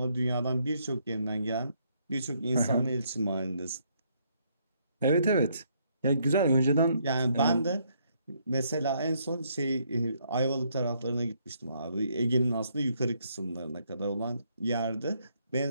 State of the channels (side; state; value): both; inverted; correlation -0.71